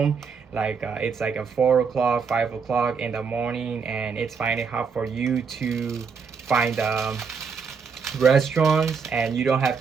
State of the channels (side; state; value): left; quieter; 5.7 dB